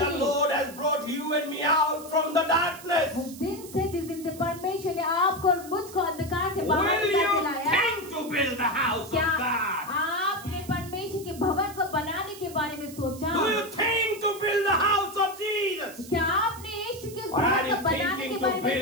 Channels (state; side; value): noise; right; hiss, 17 dB below the sound